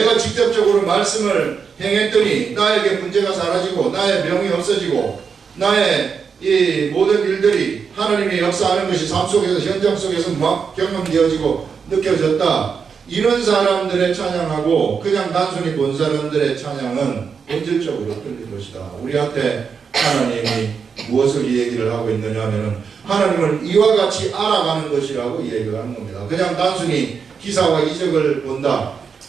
직접적으로 말씀을 행했더니 나에게 문제가 사라지고 나의 병이 없어지고 나의 이 모든 일들이 하나님의 역사하는 것이 삶 속에서 현장 속에서 막 경험되어지고 느껴졌다. 이런 사람들의 찬양하고 그냥 단순히 본 사람들의 찬양은 본질적으로 틀린 것이다. 우리한테 하나님이 무엇을 이 얘기를 하고 있느냐 하면은 하나님을 이와 같이 알아가는 것이라고 이 얘기를 하는 겁니다. 그냥 단순히 기사와 이적을 본다.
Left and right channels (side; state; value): left; quieter; 6.1 dB